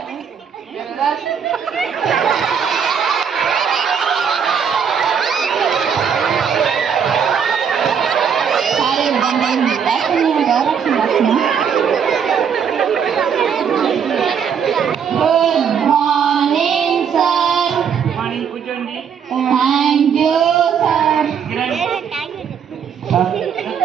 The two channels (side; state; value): left; quieter; 7.3 dB